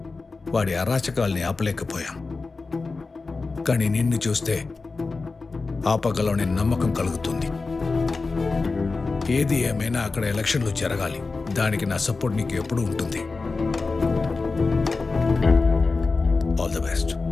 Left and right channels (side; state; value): right; quieter; 4.0 dB